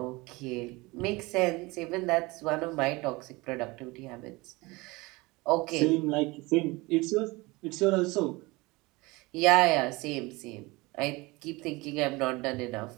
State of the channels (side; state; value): left; quieter; 23.3 dB